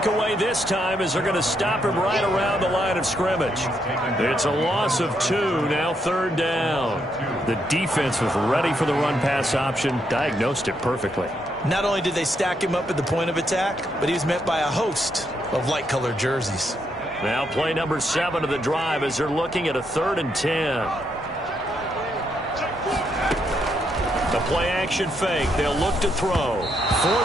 away this time as they're going to stop him right around the line of scrimmage. It's a loss of 2, now 3rd down. The defense was ready for the run-pass option, diagnosed it perfectly. Not only did they stack him up at the point of attack, but he was met by a host of light-colored jerseys. Now play number 7 of the drive as they're looking at a 3rd and 10. The play action fake. They'll look to throw.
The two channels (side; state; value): both; normal; correlation 0.77